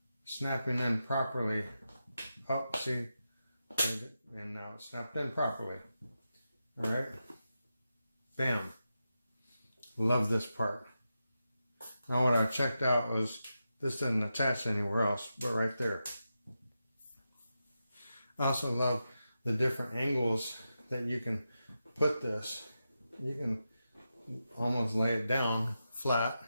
snapping in properly. Oh, see, and now it snapped in properly. All right, bam. Love this part. Now what I checked out was this didn't attach anywhere else, but right there. I also love the different angles that you can put this. You can almost lay it down flat.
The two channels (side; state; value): both; inverted; correlation -0.89